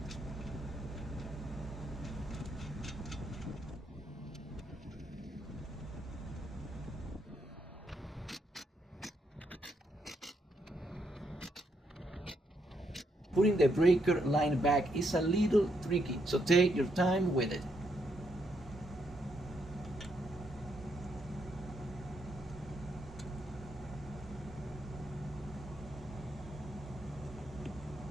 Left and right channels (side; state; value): both; normal; correlation 0.77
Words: Putting the breaker line back is a little tricky, so take your time with it.